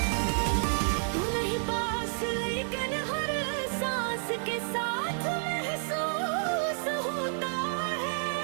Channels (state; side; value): silent; left; digital silence